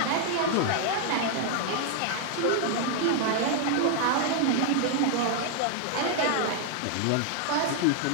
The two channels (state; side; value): different; both; correlation 0.00